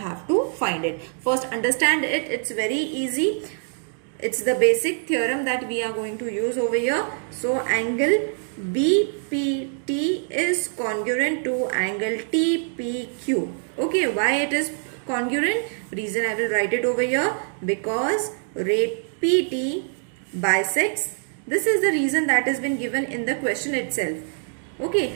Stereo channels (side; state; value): left; silent; 62 dB below the other